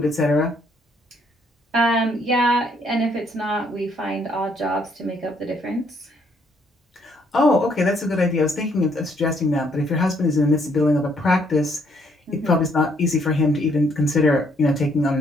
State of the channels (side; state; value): both; normal; correlation 0.69